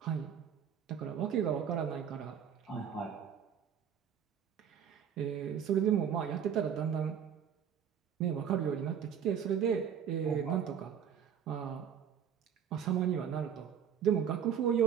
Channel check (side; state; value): left; quieter; 8.3 dB